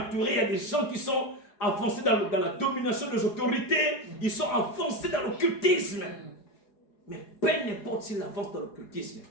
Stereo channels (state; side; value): late; right; 4.8 ms